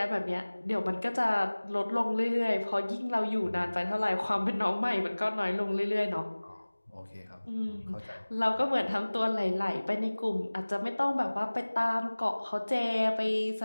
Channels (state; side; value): inverted; both; correlation -1.00